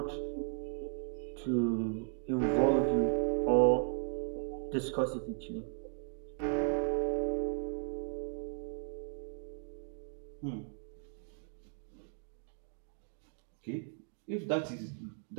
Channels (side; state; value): left; silent; 53 dB below the other